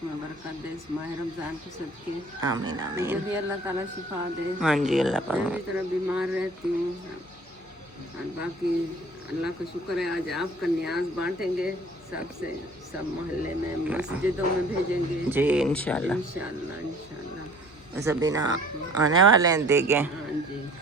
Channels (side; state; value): left; noise; hum, 28 dB below the sound